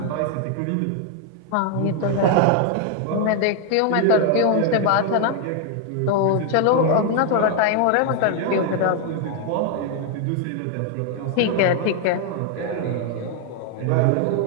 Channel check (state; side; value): different; both; correlation 0.00